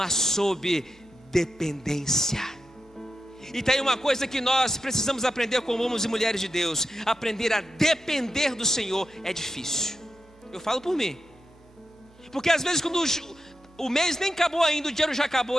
sob dependência. E tem uma coisa que nós precisamos aprender como homens e mulheres de Deus: aprender a depender do Senhor é difícil. Eu falo por mim, porque às vezes quando o mês nem acabou ainda, o dinheiro já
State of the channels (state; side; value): normal; both; correlation 0.88